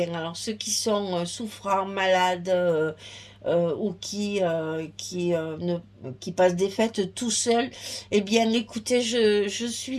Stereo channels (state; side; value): identical; both; correlation 1.00